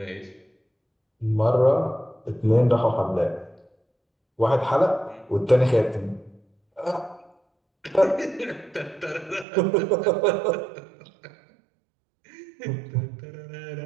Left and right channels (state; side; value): drops out; left; at 9.5 s